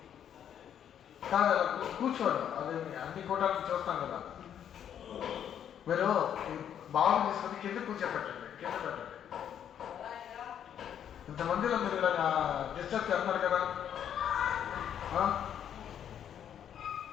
కాదు అలా కూర్చోండి, అదే అన్ని కూటాలను చూస్తాం కదా. మీరు బాగా తీసుకొని కింద కూర్చోపెట్టండి, కింద పెట్టండి. ఇంతమందిలో మీరు ఇలా డిస్టర్బ్ చేస్తున్నారు కదా.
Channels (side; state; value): right; quieter; 9.3 dB